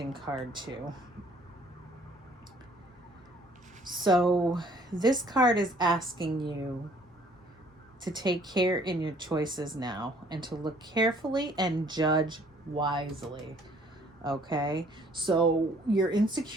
card too. So this card is asking you to take care in your choices now, and to look carefully and judge wisely. Okay, so your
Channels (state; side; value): normal; both; correlation 0.59